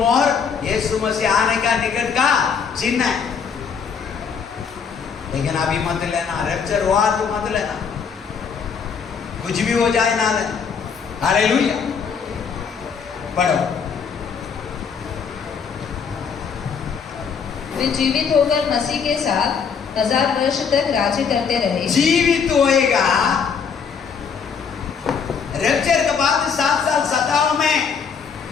यीशु मसीह आने का निकट का चिन्ह है। लेकिन अभी मत लेना, रैप्चर हुआ तो मत लेना, कुछ भी हो जाए ना लेना। हालेलुया। पढ़ो। वे जीवित होकर मसीह के साथ 1000 वर्ष तक राज्य करते रहे। जीवित होएगा, रैप्चर के बाद 7 साल सताव में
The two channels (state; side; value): quieter; right; 6.4 dB